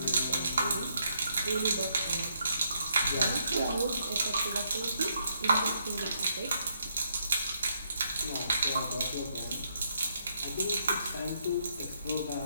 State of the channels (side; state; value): both; inverted; correlation -0.75